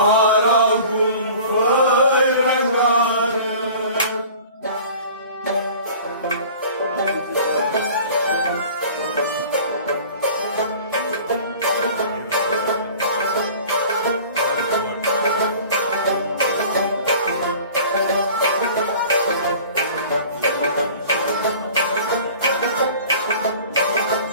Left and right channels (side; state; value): both; inverted; correlation -0.44